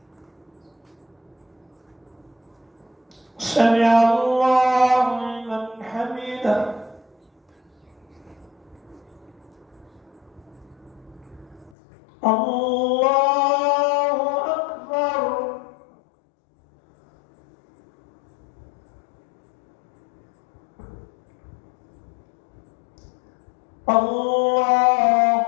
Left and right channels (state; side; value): drops out; right; at 11.7 s